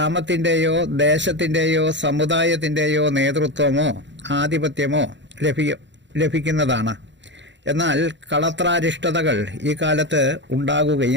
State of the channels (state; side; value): late; left; 0.53 ms